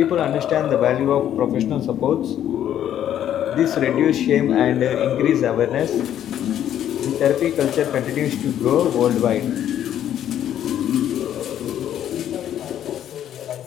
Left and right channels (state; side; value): quieter; right; 10.7 dB